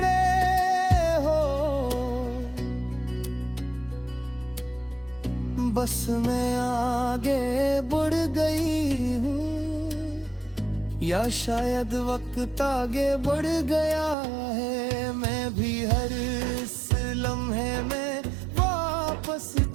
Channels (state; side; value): drops out; left; at 14.2 s